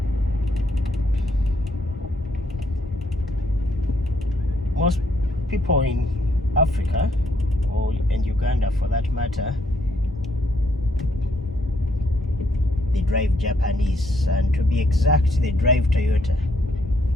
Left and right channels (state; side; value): normal; both; correlation 0.72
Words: most people in Africa, or in Uganda for that matter, they drive Japanese, and to be exact, they drive Toyota.